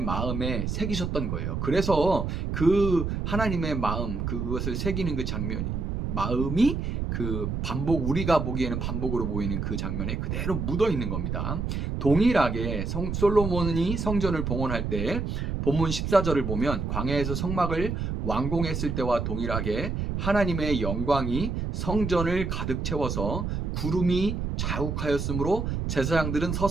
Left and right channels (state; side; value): noise; right; rumble, 2 dB below the sound